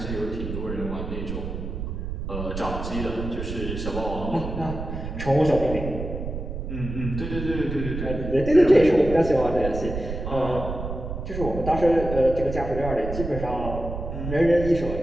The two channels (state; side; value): noise; right; rumble, 6 dB below the sound